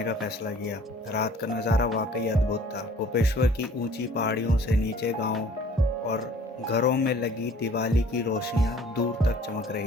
का फैसला किया। रात का नज़ारा वाकई अद्भुत था। गोपेश्वर की ऊंची पहाड़ियों से नीचे गांव और घरों में लगी दिवाली की रोशनियां दूर तक चमक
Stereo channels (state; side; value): normal; both; correlation 0.52